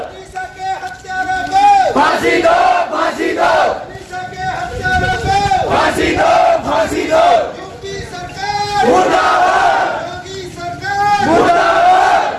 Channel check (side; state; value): both; identical; correlation 1.00